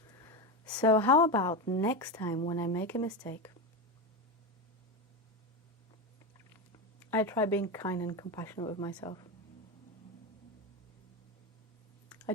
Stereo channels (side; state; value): both; normal; correlation 0.16